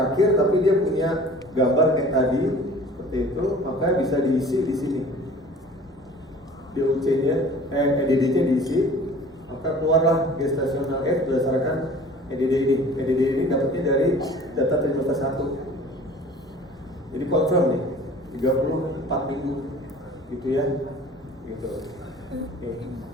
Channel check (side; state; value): both; normal; correlation 0.46